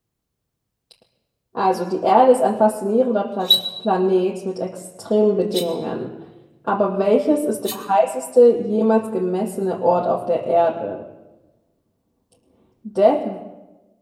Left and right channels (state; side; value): identical; both; correlation 1.00